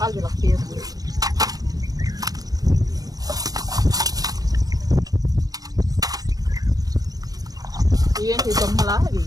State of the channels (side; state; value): left; late; 0.18 ms